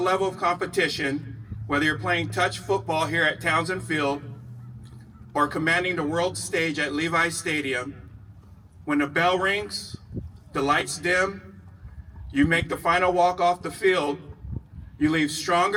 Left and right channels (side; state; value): both; identical; correlation 1.00